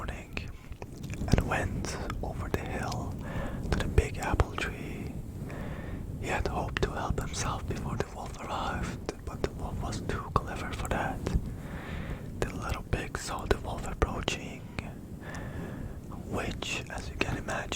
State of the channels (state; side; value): identical; both; correlation 1.00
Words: and went over the hill to the big apple tree. He had hoped to help himself before the wolf arrived, but the wolf was too clever for that. The little pig saw the wolf approaching, which, as you can